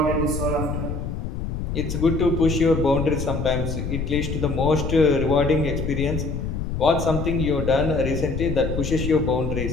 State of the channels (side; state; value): left; noise; rumble, 4 dB below the sound